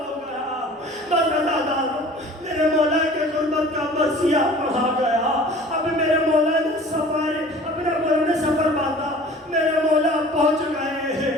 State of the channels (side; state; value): both; normal; correlation 0.45